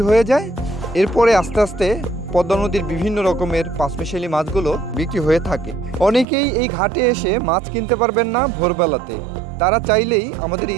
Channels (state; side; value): drops out; left; at 6.2 s